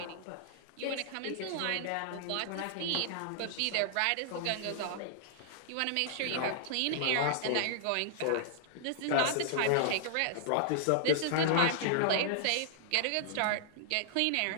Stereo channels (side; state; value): both; different; correlation -0.01